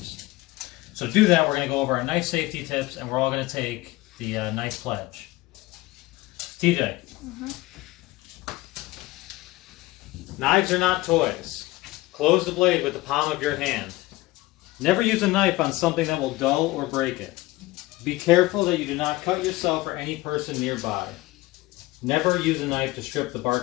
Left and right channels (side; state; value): right; quieter; 19.4 dB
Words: So to do that, we're going to go over our knife safety tips, and we're all going to take the knife pledge. TJ. Knives are not toys. Close the blade with the palm of your hand. Never use a knife on something that will dull or break it. Be careful that you do not cut yourself or any person nearby. Never use a knife to strip the